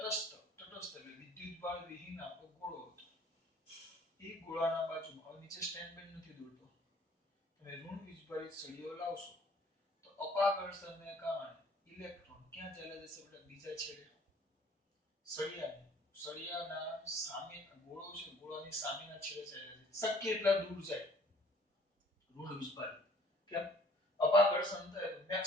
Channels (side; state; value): both; normal; correlation 0.55